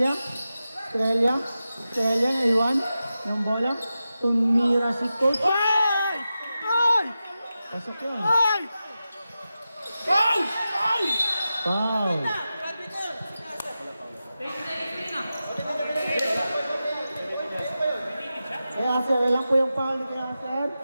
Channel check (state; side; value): inverted; both; correlation -0.92